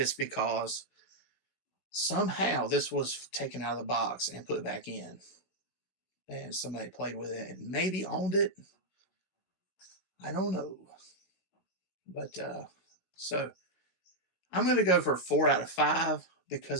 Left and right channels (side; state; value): right; late; 16 ms